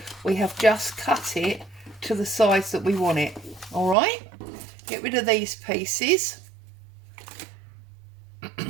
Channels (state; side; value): drops out; left; at 4.0 s